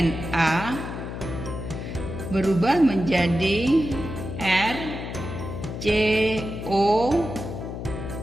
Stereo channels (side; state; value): left; noise; hum, 7 dB below the sound